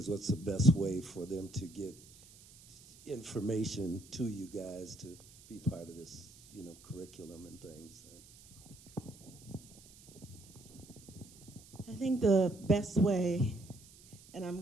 what's the best way for them to get information to you guys to be part of this, curriculum and things? I think the best way, and I'm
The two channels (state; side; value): noise; right; hiss, 22 dB below the sound